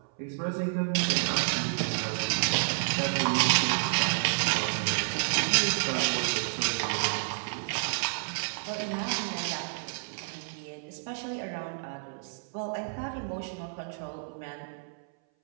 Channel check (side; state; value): left; silent; 58 dB below the other